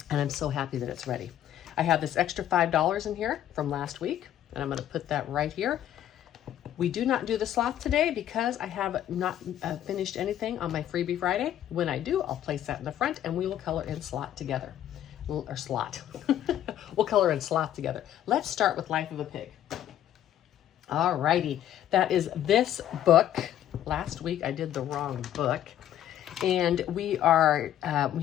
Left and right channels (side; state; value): right; quieter; 11.6 dB